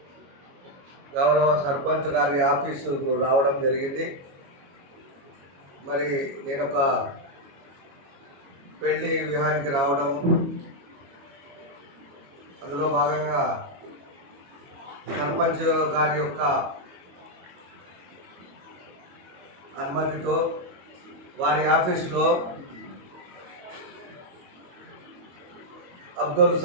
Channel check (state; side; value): late; left; 22 ms